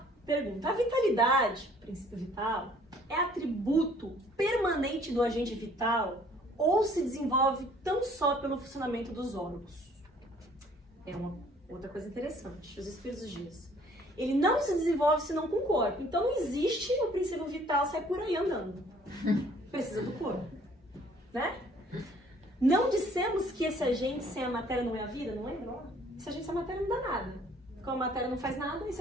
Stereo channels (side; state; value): both; normal; correlation 0.58